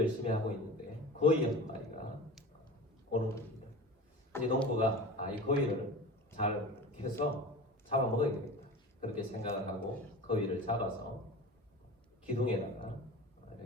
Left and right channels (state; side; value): normal; both; correlation 0.34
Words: 하고 있는데 거위 한 마리가 오는 겁니다. 이제 농부가 이 거위를 잘 해서 잡아먹어야 되겠다, 그렇게 생각을 하고 거위를 잡아서 기둥에다가